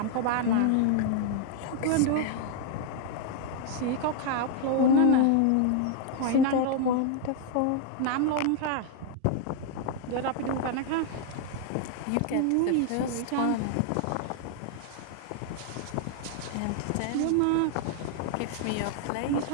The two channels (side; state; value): both; different; correlation 0.00